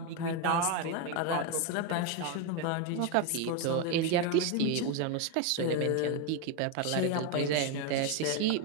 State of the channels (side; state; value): both; different; correlation 0.02